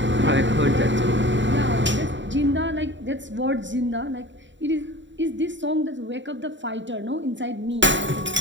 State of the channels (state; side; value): late; left; 0.54 ms